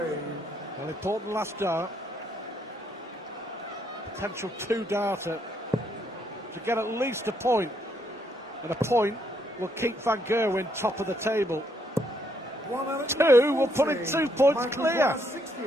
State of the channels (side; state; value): both; normal; correlation 0.73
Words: Well, important last dart. Potential 2-darter to get at least a point. And a point will keep Van Gerwen top of the table. 2 will put it 2 points clear.